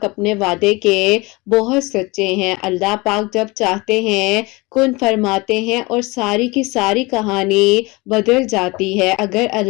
اپنے وعدے کے بہت سچے ہیں، اللہ پاک جب چاہتے ہیں کن فرماتے ہیں اور ساری کی ساری کہانی بدل جاتی ہے۔ اگر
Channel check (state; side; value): quieter; right; 24.3 dB